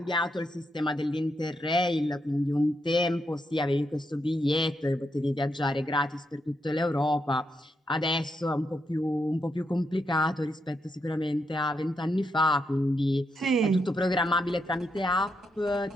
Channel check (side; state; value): both; normal; correlation 0.81